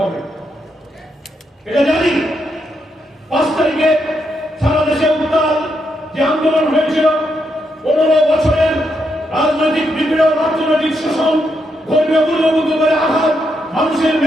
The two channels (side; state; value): both; normal; correlation 0.80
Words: এটা জানি। 5 তারিখে সারা দেশে উত্তাল যে আন্দোলন হয়েছিল, 15 বছরের রাজনৈতিক বিপ্লব, অর্থনৈতিক শোষণ, ধর্মীয় মূল্যবোধের আঘাত, মানুষের